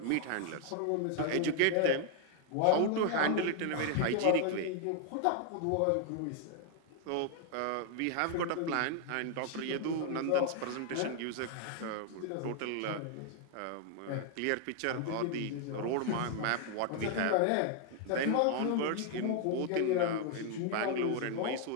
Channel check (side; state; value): both; different; correlation 0.00